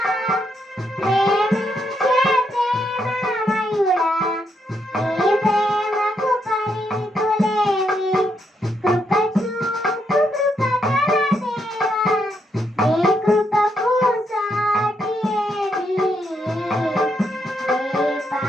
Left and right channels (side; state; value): both; normal; correlation 0.78